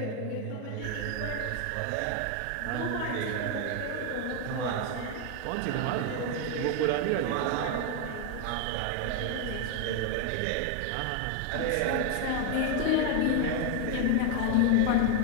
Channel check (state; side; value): different; both; correlation 0.01